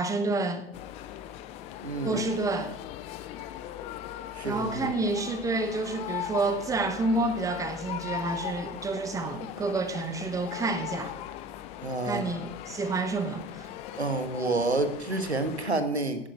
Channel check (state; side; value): normal; both; correlation 0.44